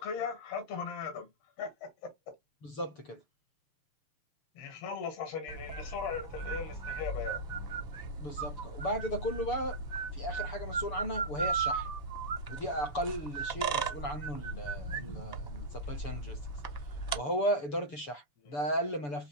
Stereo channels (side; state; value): right; late; 6.9 ms